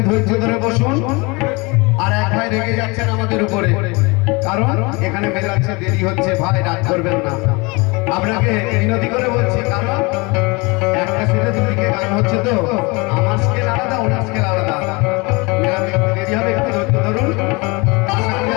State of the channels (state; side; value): quieter; right; 26.8 dB